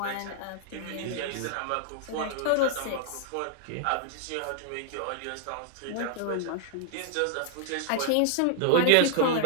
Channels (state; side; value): different; both; correlation -0.01